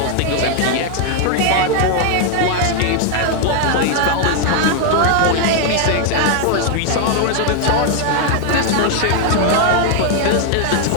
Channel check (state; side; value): different; both; correlation 0.00